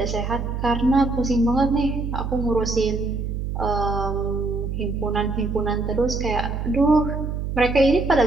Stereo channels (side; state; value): right; noise; hum, 3 dB below the sound